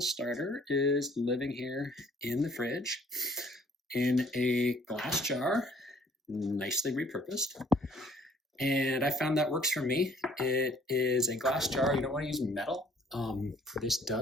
starter is living here in the fridge in a glass jar, nicely repurposed. And I found that works for me. It is a glass jar. You don't want to use metal. This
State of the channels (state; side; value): normal; both; correlation 0.58